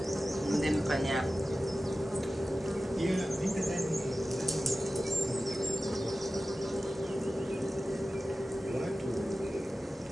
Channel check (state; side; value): normal; both; correlation 0.95